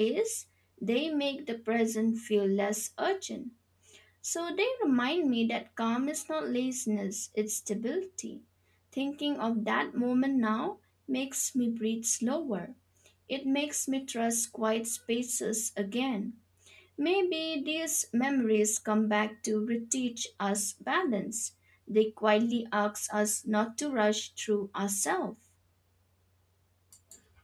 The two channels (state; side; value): identical; both; correlation 1.00